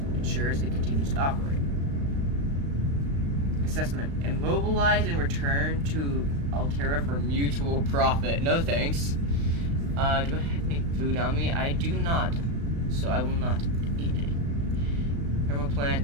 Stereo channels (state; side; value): late; left; 35 ms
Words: ensures it continues to operate. Assessment. Immobilize and return to Altera for mutual profit. No thanks. Do I have any food on me? I do not, so I will not eat any. Thermoplant,